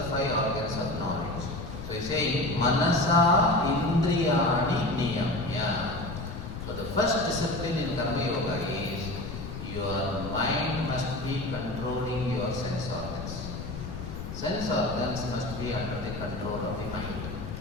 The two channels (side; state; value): left; noise; rumble, 8 dB below the sound